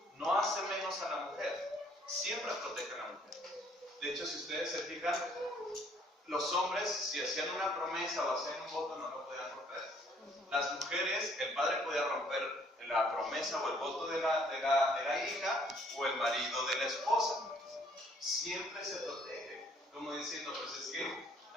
No hace menos a la mujer, siempre protege a la mujer. De hecho, si ustedes se fijan, los hombres, si hacían una promesa o hacían un voto, no lo podían romper. Las mujeres, el padre podía romper la promesa o el voto de la hija o el marido de la esposa. Siempre se protege, como diciendo, pues es que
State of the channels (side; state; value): both; normal; correlation 0.62